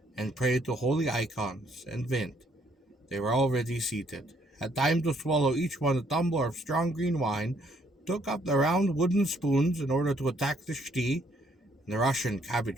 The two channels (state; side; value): normal; both; correlation 0.68